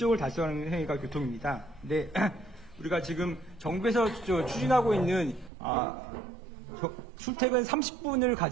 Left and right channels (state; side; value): drops out; left; at 5.5 s